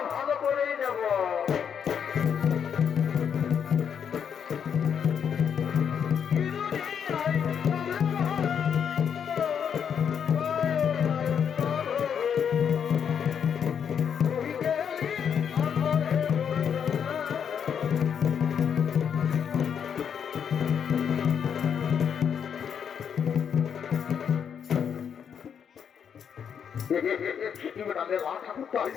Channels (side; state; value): right; quieter; 7.7 dB